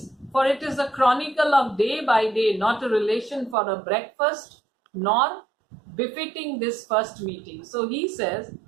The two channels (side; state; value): left; drops out; at 3.6 s